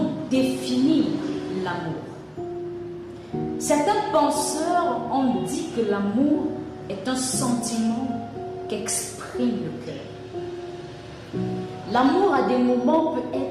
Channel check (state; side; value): identical; both; correlation 1.00